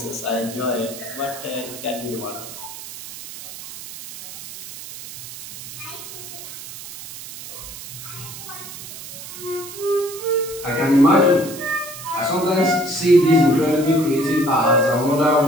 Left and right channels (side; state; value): right; noise; hiss, 12 dB below the sound